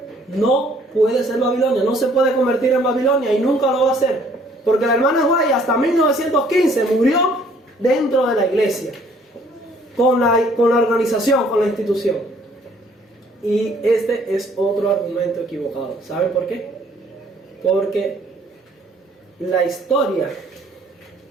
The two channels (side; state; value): both; normal; correlation 0.60